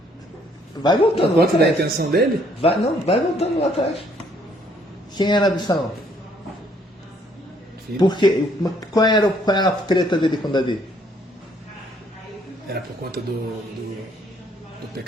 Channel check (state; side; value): normal; both; correlation 0.65